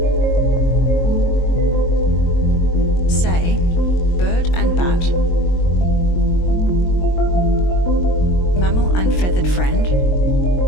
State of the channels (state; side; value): late; right; 22 ms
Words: Say, bird and bat, mammal and feathered friend,